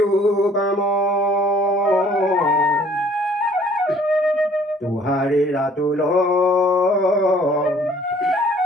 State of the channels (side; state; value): both; normal; correlation 0.57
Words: काम तुहारी रातुल